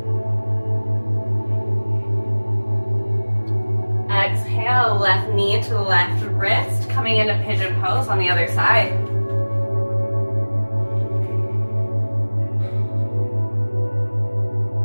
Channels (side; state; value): both; inverted; correlation -1.00